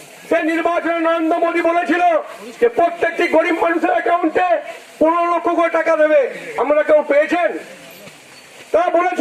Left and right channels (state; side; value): identical; both; correlation 1.00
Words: সেই নির্বাচনে নরেন্দ্র মোদী বলেছিল যে প্রত্যেকটি গরিব মানুষের অ্যাকাউন্টে 15 লক্ষ করে টাকা দেবে। আপনারা কেউ পেয়েছেন? তারা